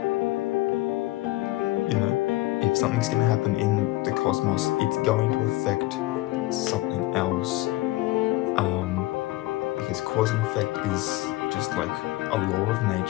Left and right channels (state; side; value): quieter; right; 18.8 dB